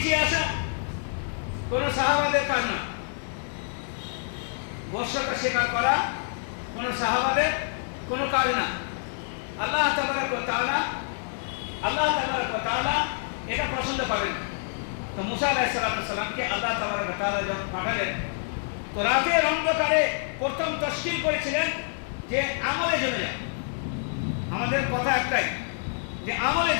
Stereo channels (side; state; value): right; silent; digital silence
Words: আসা কোন সাহাবাদের কাজ না। বশ্যতা স্বীকার করা কোন সাহাবাদের কোন কাজ না। আল্লাহ তাবারক ওয়া তাআলা এটা পছন্দ করেন। তো মুসা আলাইহিস সালামকে আল্লাহ তাবারক ওয়া তাআলা যখন পাঠালেন, তো রাতের অন্ধকারে প্রথম তশকিল করেছিলেন যে আমলে জমে যাও। আমাদের কথা একটাই যে আমলে